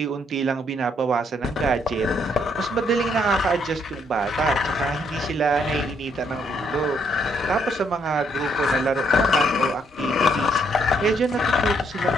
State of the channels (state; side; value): normal; both; correlation 0.71